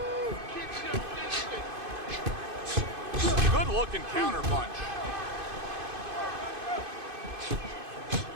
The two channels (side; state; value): left; late; 2.5 ms